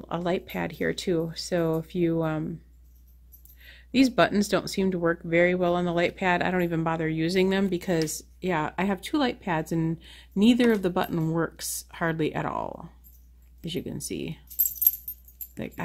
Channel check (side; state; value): both; identical; correlation 1.00